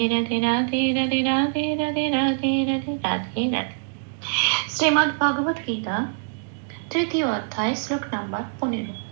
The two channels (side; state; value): left; silent; digital silence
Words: রাধে রাধে রাধে রাধে রাধে রাধে রাধে রাধে রাধে। শ্রীমদ্ ভগবত গীতা তৃতীয় অধ্যায় শ্লোক নাম্বার 15।